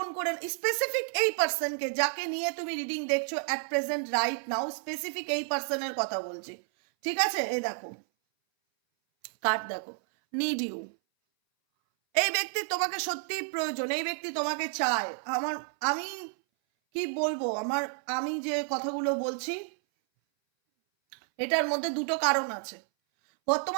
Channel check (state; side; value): silent; left; 58 dB below the other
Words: করে। স্পেসিফিক এই পার্সনকে যাকে নিয়ে তুমি রিডিং দেখছো at present right now, specific এই পার্সনের কথা বলছি, ঠিক আছে? এই দেখো কার্ড, দেখো নিড ইউ। এই ব্যক্তি তোমাকে সত্যি প্রয়োজন, এই ব্যক্তি তোমাকে চায়। আমি কি বলবো, আমি যে কথাগুলো বলছি, এটার মধ্যে দুটো কারণ আছে।